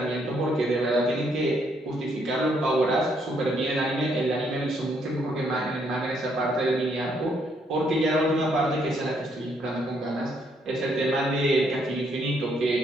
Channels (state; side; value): normal; both; correlation 0.72